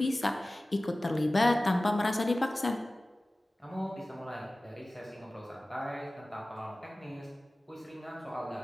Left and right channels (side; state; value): both; normal; correlation 0.97